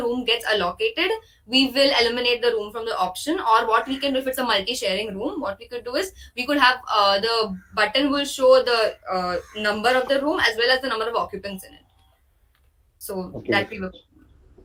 room gets allocated, we will eliminate the room from the option. Or what we can do, if it's a multi-sharing room, what we could do is we could have the button will show the number of the room as well as the number of occupants in it. So okay. that we were.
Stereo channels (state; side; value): identical; both; correlation 1.00